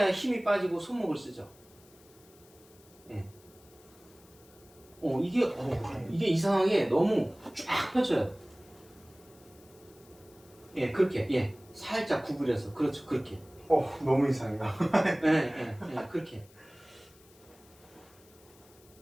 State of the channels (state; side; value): noise; left; hiss, 27 dB below the sound